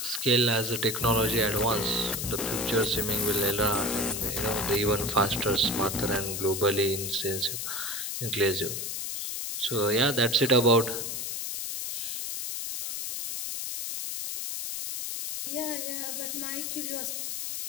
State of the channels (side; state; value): left; noise; hiss, 4 dB below the sound